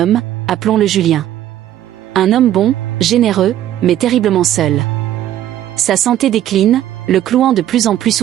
appelons-le Julien. Un homme bon, généreux, mais terriblement seul. Sa santé décline, le clouant de plus en plus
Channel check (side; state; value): left; quieter; 12.3 dB